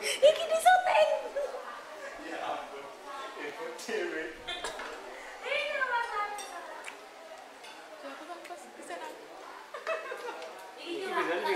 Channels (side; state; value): both; identical; correlation 1.00